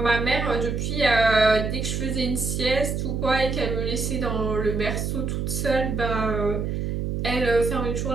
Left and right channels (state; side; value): noise; right; hum, 2 dB below the sound